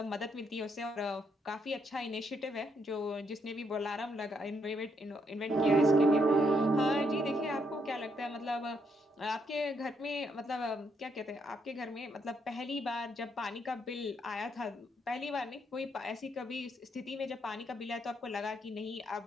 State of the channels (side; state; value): both; normal; correlation 0.75